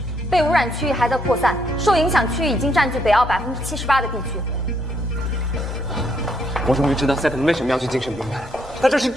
被污染区域还在扩散，受影响区域已经占据北澳78%的地区。我终于知道赛特为什么要去精神病院，他这是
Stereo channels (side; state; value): both; normal; correlation 0.72